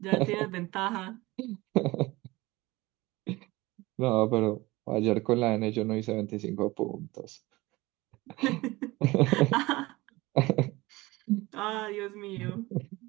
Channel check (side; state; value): left; quieter; 20.8 dB